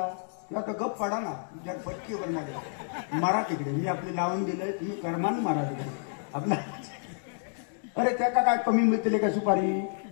किंवा तो गप पडा ना तुमच्या पटकीवर नाही मारा तिकडे. मी आपली लावून दिलंय, तुम्ही कर्माने मारा तिकडे आपल्या. अरे त्याका काय कमी मिळतील का सुपारी,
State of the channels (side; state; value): right; silent; digital silence